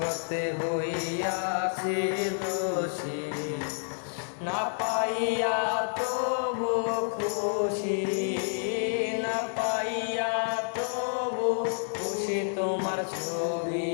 হইয়াছি দোষী। না পাইয়া তবু খুশি, না পাইয়া তবু খুশি। তোমার ছবি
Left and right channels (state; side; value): silent; right; digital silence